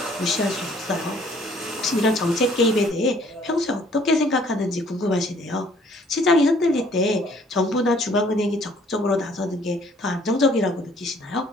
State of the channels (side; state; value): both; normal; correlation 0.60